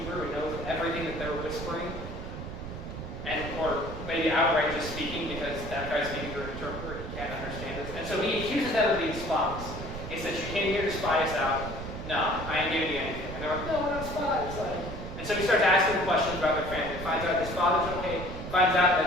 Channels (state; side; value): noise; right; rumble, 8 dB below the sound